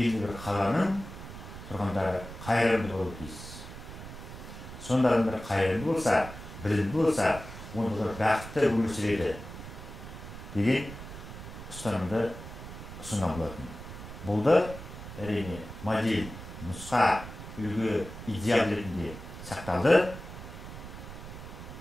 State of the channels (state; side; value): noise; right; rumble, 12 dB below the sound